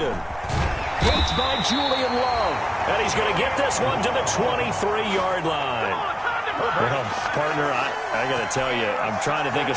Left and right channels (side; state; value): both; identical; correlation 1.00